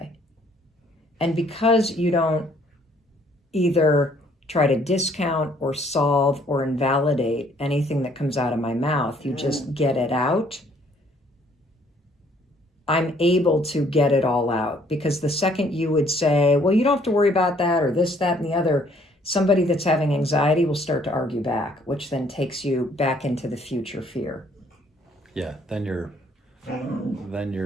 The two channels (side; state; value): both; normal; correlation 0.63